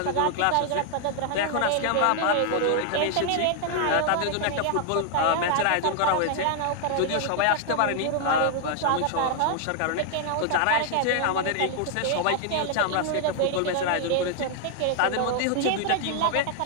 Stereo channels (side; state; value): both; different; correlation 0.00